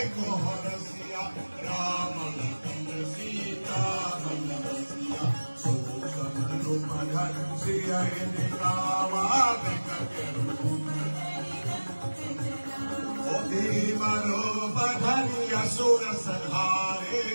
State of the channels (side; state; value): both; inverted; correlation -1.00